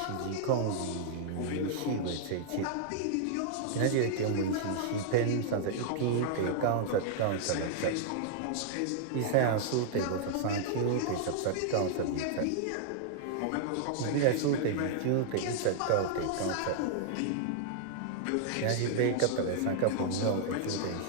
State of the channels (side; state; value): both; different; correlation -0.01